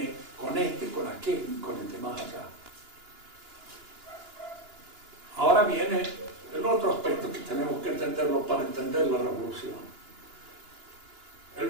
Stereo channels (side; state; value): left; late; 2.9 ms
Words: con este, con aquel y con el de más allá. Ahora viene el otro aspecto que tenemos que entenderlo para entender la revolución. El